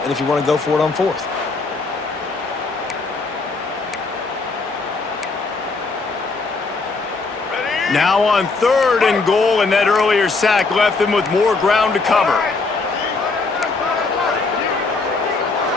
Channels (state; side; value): quieter; right; 3.9 dB